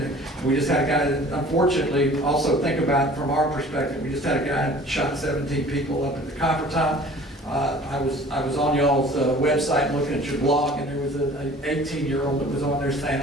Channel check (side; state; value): both; normal; correlation 0.47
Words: we just had a guy that, unfortunately, also think about it from our perspective. We just had a guy that shot 17 people up at the Copper Top. I was on y'all's website looking at your blog, and there was an 18-year-old that was on there saying,